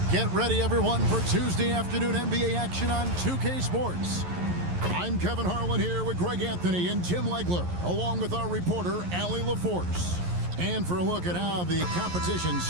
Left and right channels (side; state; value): left; late; 11 ms